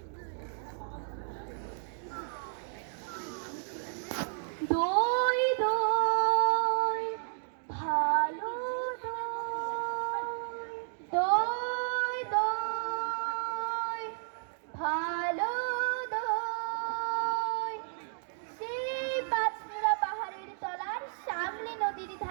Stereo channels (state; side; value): silent; left; digital silence